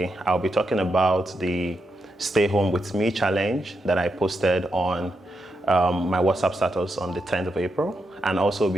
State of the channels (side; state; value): both; normal; correlation 0.84